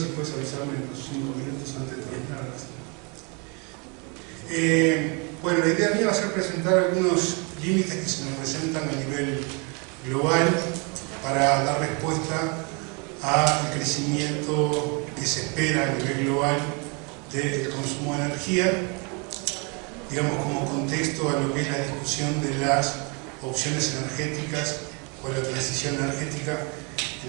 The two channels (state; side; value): quieter; left; 32.7 dB